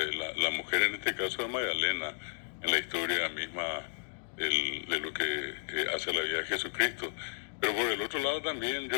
la mujer en este caso es Magdalena, en la historia misma de lo que hace la vida de Jesucristo. Pero por el otro lado también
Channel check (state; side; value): silent; right; digital silence